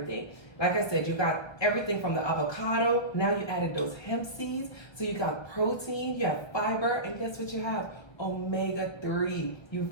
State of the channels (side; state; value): right; late; 1.3 ms